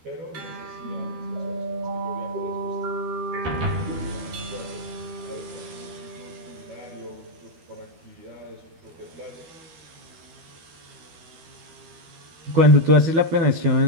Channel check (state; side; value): late; left; 12 ms